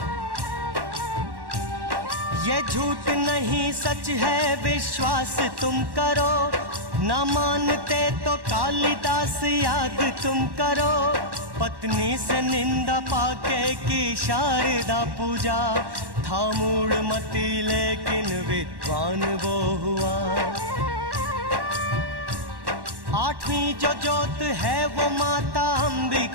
ये झूठ नहीं सच है विश्वास तुम करो, ना मानते तो कालिदास याद तुम करो। पत्नी से निंदा पाके की शारदा पूजा, था मूढ़ मती लेकिन विद्वान वो हुआ। आठवीं जो जोत है वो माता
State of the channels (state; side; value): late; left; 1.1 ms